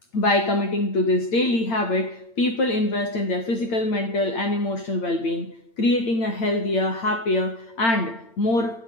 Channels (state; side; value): late; right; 8.8 ms